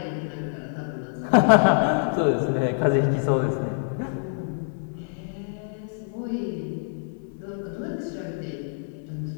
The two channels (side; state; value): right; silent; 61 dB below the other